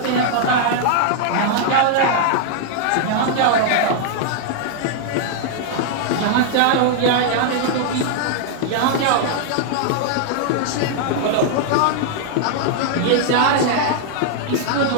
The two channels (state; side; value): different; both; correlation -0.01